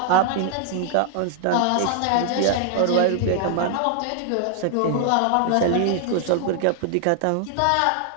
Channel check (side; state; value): both; different; correlation 0.00